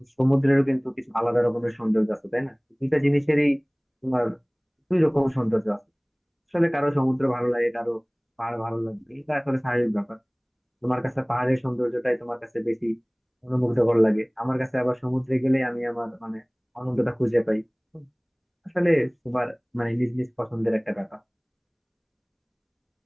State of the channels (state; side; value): identical; both; correlation 1.00